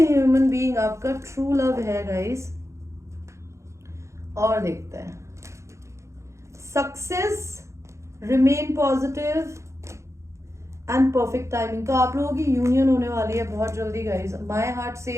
बीइंग आपका ट्रू लव है गाइस। और देखते हैं success, remain positive and perfect timing. तो आप लोगों की यूनियन होने वाली है बहुत जल्दी guys. My heart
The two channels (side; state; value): left; late; 0.14 ms